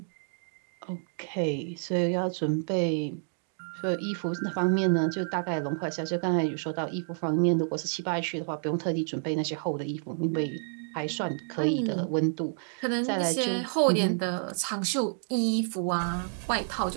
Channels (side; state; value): left; silent; digital silence